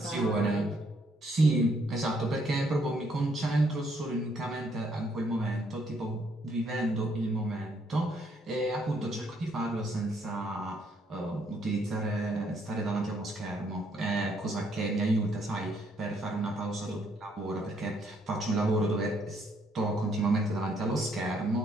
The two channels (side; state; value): both; normal; correlation 0.70